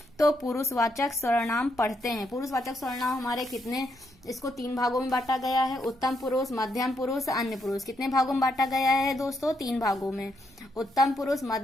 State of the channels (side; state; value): right; noise; rumble, 28 dB below the sound